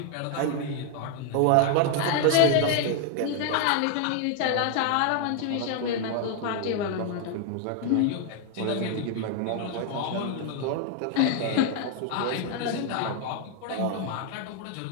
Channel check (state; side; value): different; both; correlation 0.00